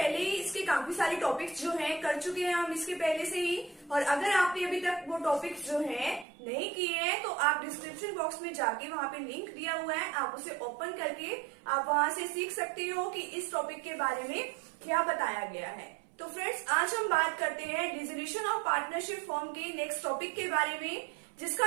ही इसके काफी सारे टॉपिक्स जो हैं कर चुके हैं हम इसके पहले से ही। और अगर आपने अभी तक वो टॉपिक्स जो हैं नहीं किए हैं तो आप डिस्क्रिप्शन बॉक्स में जाके वहां पे लिंक दिया हुआ है, आप उसे ओपन करके आप वहां से सीख सकते हो कि इस टॉपिक के बारे में क्या बताया गया है। तो फ्रेंड्स, आज हम बात करते हैं डिसोल्यूशन ऑफ पार्टनरशिप फॉर्म के नेक्स्ट टॉपिक के बारे में, जिसका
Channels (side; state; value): left; drops out; at 6.2 s